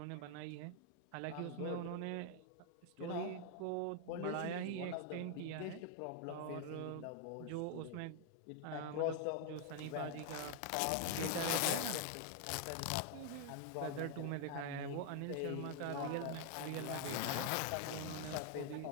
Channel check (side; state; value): both; different; correlation 0.00